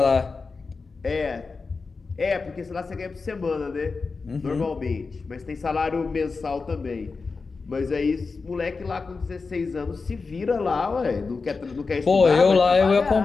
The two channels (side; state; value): right; quieter; 4.4 dB